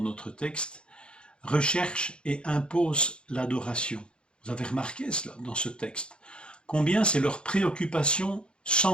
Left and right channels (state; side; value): late; right; 0.054 ms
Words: notre texte, recherche et impose l'adoration. Vous avez remarqué cela dans ce texte. Combien c'est leur préoccupation